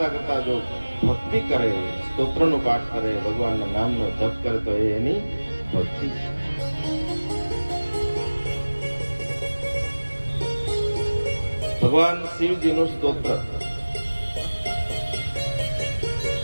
કરતા જો ભક્તિ કરે, સ્તોત્રનો પાઠ કરે, ભગવાનના નામનો જપ કરે તો એ એની ભક્તિ છે. ભગવાન શિવજીનું સ્તોત્ર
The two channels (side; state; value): both; inverted; correlation -1.00